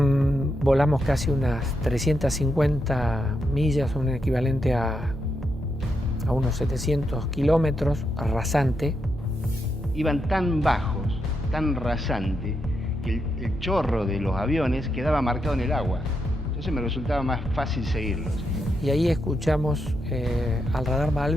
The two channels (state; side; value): normal; both; correlation 0.83